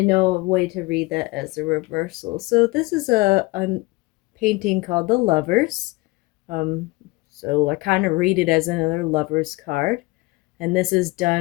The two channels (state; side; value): quieter; right; 23.5 dB